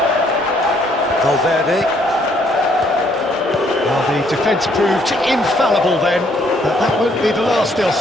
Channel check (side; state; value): both; normal; correlation 0.67